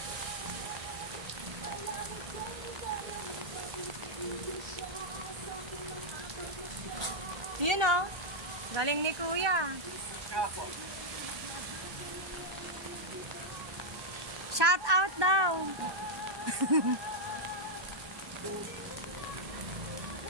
Yun o. Galing ni Kuya. Ako. Shout out daw.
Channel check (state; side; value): late; left; 1.2 ms